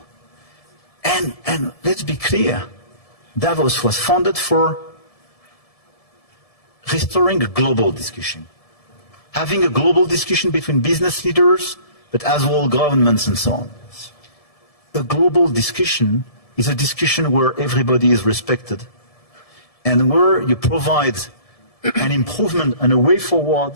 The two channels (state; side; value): late; right; 1.7 ms